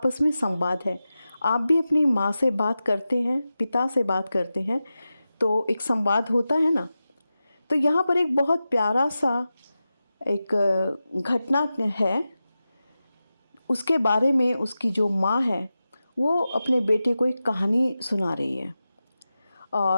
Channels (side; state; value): both; inverted; correlation -0.93